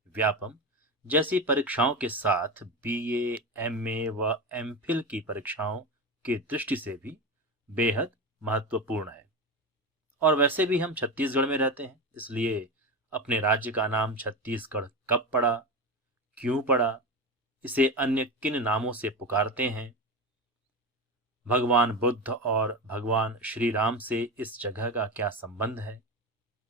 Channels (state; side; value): normal; both; correlation 0.21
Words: व्यापम जैसी परीक्षाओं के साथ बीए, एमए व एमफिल की परीक्षाओं की दृष्टि से भी बेहद महत्वपूर्ण है। और वैसे भी हम छत्तीसगढ़ में रहते हैं, इसलिए अपने राज्य का नाम छत्तीसगढ़ कब पड़ा, क्यों पड़ा, इसे अन्य किन नामों से पुकारते हैं, भगवान बुद्ध और भगवान श्री राम से इस जगह का क्या संबंध है,